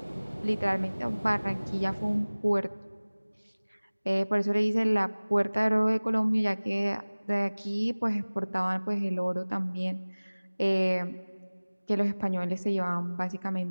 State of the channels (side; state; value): both; inverted; correlation -1.00